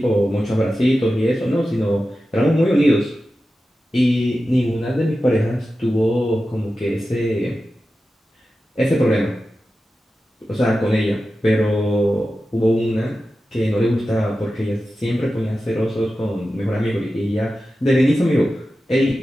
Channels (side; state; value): both; normal; correlation 0.93